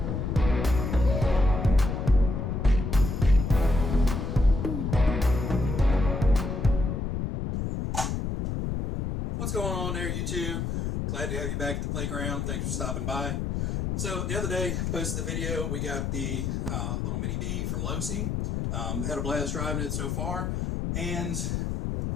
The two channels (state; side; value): noise; left; rumble, 1 dB below the sound